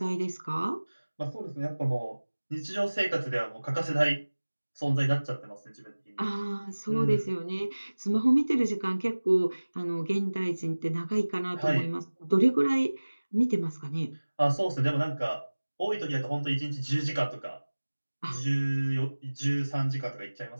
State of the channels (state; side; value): inverted; both; correlation -1.00